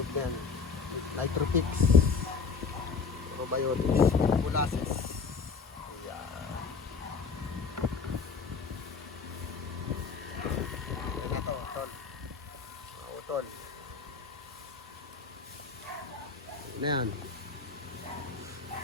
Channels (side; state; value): right; quieter; 5.1 dB